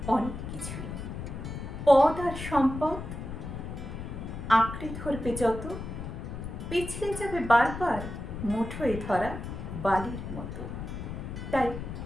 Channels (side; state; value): left; noise; rumble, 7 dB below the sound